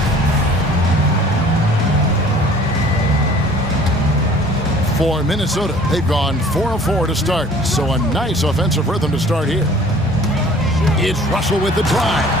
For Minnesota, they've gone 4 of 4 to start. So a nice offensive rhythm to start here. It's Russell with the drive.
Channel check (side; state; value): both; normal; correlation 0.51